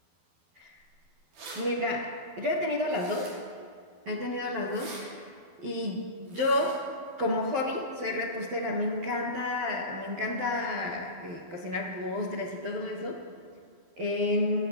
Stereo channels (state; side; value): late; left; 12 ms